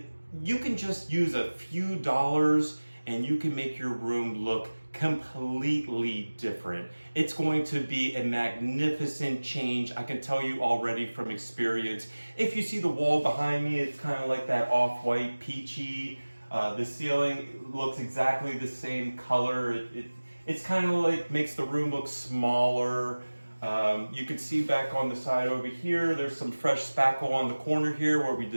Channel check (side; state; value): both; inverted; correlation -1.00